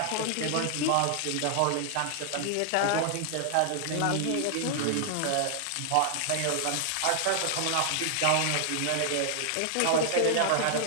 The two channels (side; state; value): both; different; correlation 0.00